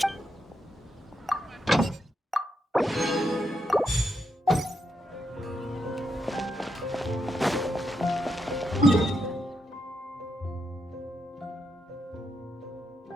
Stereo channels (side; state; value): both; normal; correlation 0.82